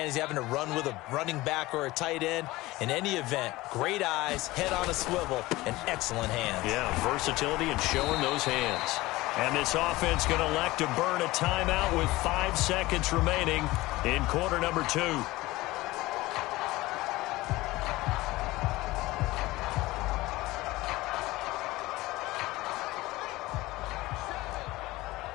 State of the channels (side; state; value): right; quieter; 19.2 dB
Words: Is he having to run with a running back or a tight end? In any event, great eyes, head on a swivel, and excellent hands. Yeah, versatility and showing those hands. And this offense going to elect to burn a timeout with 5 seconds remaining in quarter number 2.